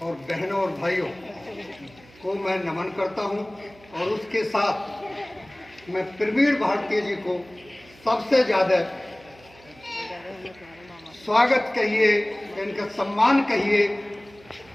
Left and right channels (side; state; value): right; noise; hum, 25 dB below the sound